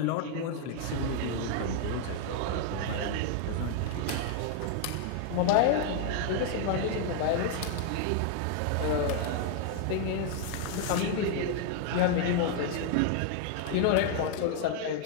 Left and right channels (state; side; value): different; both; correlation 0.00